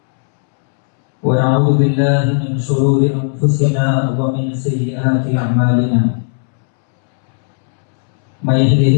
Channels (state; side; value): silent; right; 70 dB below the other